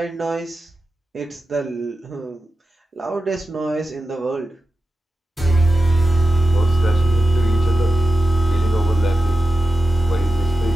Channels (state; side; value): normal; both; correlation 0.93